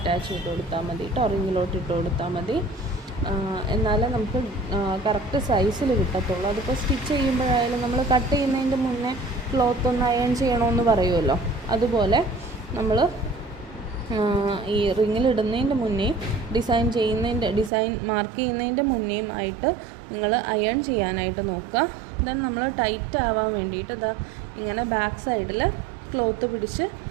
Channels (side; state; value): left; drops out; at 17.7 s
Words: ചെയ്ത് കൊടുത്താൽ മതി കേട്ടോ, റിങ്ങിലോട്ട് ഇട്ട് കൊടുത്താൽ മതി. എന്നാലേ നമുക്ക് കറക്റ്റ് സൈസിൽ കിട്ടത്തുള്ളൂ. അതിപ്പോൾ സ്റ്റിച്ച് ചെയ്യുമ്പോഴായാലും നമ്മൾ കട്ട് ചെയ്യുന്നതിൻ്റെ മുന്നേ ക്ലോത്ത് ഒന്ന് അയൺ ചെയ്യണമെന്ന് പറയുമല്ലോ, അതുപോലെ നമ്മൾ ഈ റിങ്ങിലിടുന്നതിൻ്റെ മുന്നേ ഡിസൈൻ മാർക്ക് ചെയ്യുന്നതിൻ്റെ മുന്നേയും ആയിട്ട് നിങ്ങൾ അയൺ ചെയ്യാനായിട്ട് നോക്കുക. ദെൻ നമ്മൾ ടൈറ്റ് ആവാൻ വേണ്ടിയിട്ട് ഇതാ ഇങ്ങനെ ബാക്ക് സൈഡിൽ ക്ലോത്ത് പിടിച്ച്